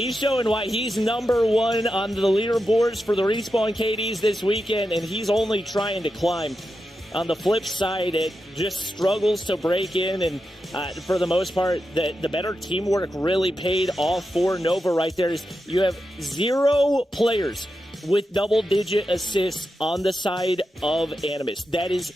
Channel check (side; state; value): both; normal; correlation 0.89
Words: showing why he's number 1 on the leaderboards for the Respawn KDs this weekend, and he's only trying to climb. On the flip side, it just struggles to break in, and for the most part, the better teamwork really paid off for Nova right there. You have 0 players with double-digit assists on the side of Animus. That is